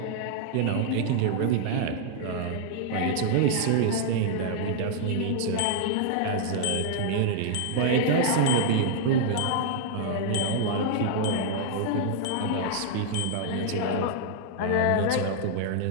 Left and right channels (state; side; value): different; both; correlation -0.01